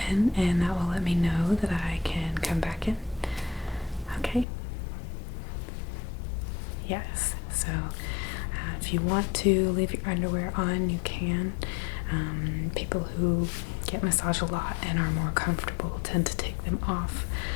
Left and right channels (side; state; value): right; drops out; at 4.5 s